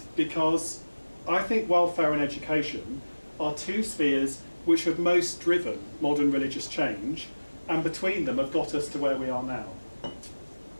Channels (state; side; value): inverted; both; correlation -1.00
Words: because I think welfare and education are two spheres which have most driven modern religious change, and between them have got us to where we are now.